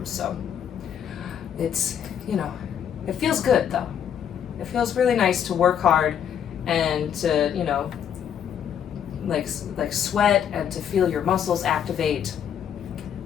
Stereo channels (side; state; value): right; quieter; 8.8 dB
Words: so it's, it feels good, though. It feels really nice to work hard and to, like sweat and to feel your muscles activate.